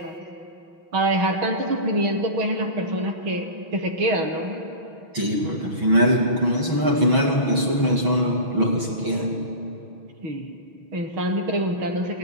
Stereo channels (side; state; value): left; late; 6.2 ms